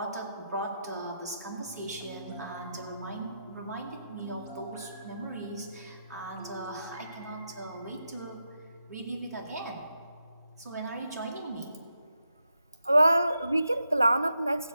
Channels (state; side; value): inverted; both; correlation -0.85